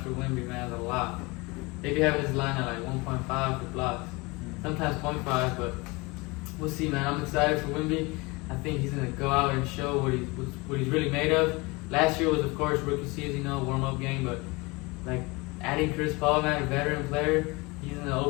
for Wemby, man, is a lot. They be having his line at like 1.5 for blocks. Sometimes 0.5, but we'll see, man. I'm excited for Wemby. I think he's going to go out and show what he's really made of. Last year was, of course, rookie season, warm-up game, but like adding Chris Paul, man, a veteran player, he's going to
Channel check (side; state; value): right; quieter; 25.4 dB